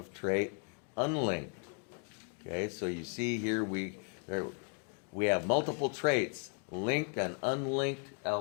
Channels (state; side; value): quieter; right; 37.8 dB